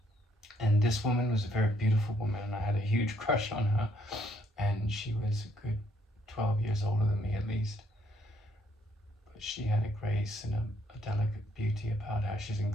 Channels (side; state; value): both; normal; correlation 0.69